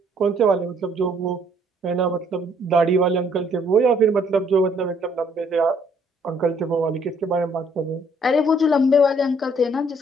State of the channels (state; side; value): normal; both; correlation 0.64